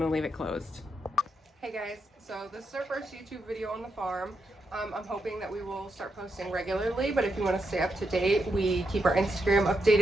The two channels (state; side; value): normal; both; correlation 0.83